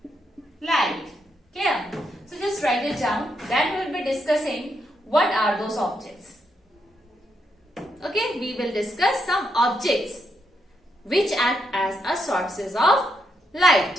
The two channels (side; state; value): both; normal; correlation 0.79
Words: light. Clear? So just write it down. Then we will be discussing what are those objects. Okay, we will discuss some objects which act as a sources of